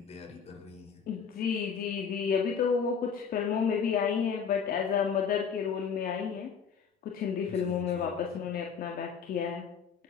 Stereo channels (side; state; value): right; quieter; 6.6 dB